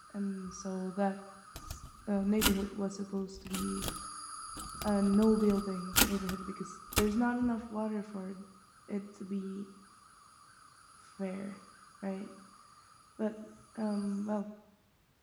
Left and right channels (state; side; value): identical; both; correlation 1.00